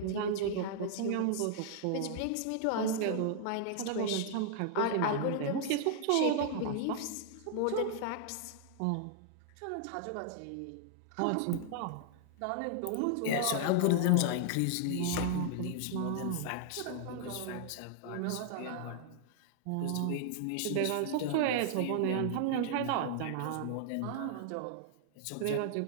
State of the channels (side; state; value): both; different; correlation -0.01